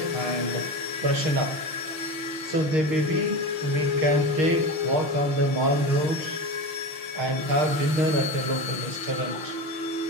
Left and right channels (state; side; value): late; left; 5.9 ms